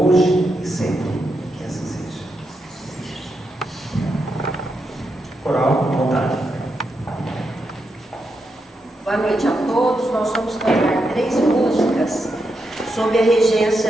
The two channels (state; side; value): normal; both; correlation 0.84